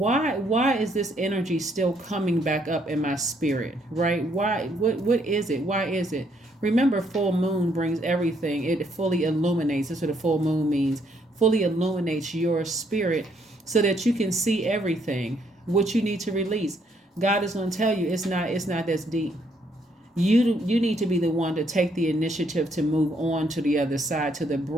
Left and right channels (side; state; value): both; normal; correlation 0.71